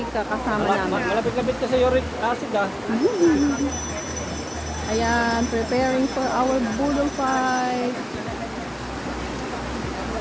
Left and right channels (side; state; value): both; identical; correlation 1.00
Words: kasama namin. Malapit-lapit ka sa uric acid ah. Ayan, preparing for our boodle fight.